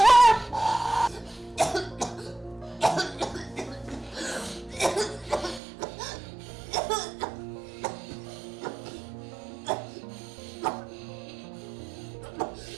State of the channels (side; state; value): left; drops out; at 5.6 s